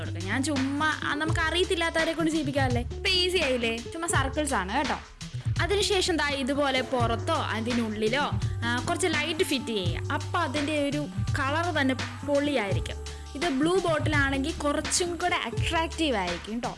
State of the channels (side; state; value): both; identical; correlation 1.00